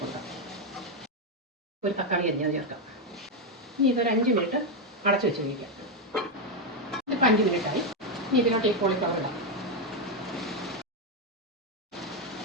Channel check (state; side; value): normal; both; correlation 0.05